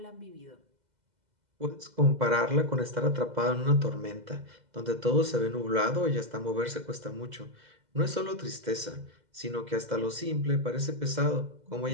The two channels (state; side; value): late; left; 2.0 ms